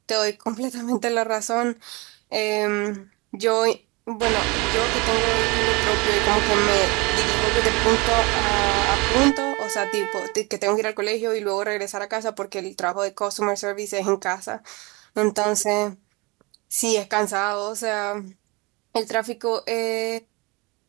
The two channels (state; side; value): quieter; left; 26.3 dB